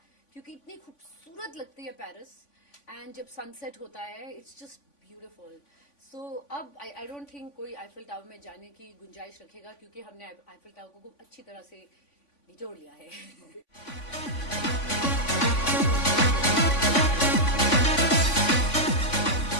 क्योंकि इतनी खूबसूरत लगती है पेरिस. एंड जब सनसेट होता है, इट्स जस्ट ब्यूटिफुल. सो अब आई डोंट थिंक कोई आईफिल टावर में जाने की गुंजाइश रखेगा, क्योंकि हमने आईफिल टावर को खूब अच्छी तरह से निचोड़ लिया है.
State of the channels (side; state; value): right; late; 3.5 ms